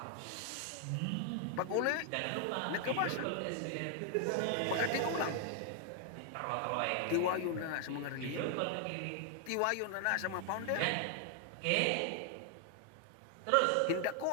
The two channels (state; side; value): different; both; correlation 0.00